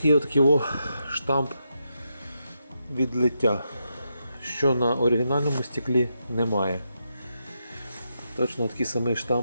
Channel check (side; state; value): both; inverted; correlation -0.84